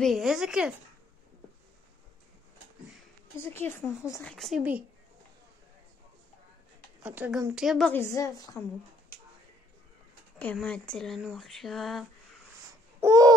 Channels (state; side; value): normal; both; correlation 0.65